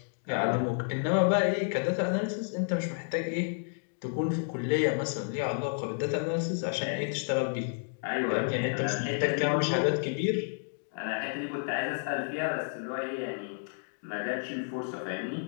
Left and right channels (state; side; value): silent; right; digital silence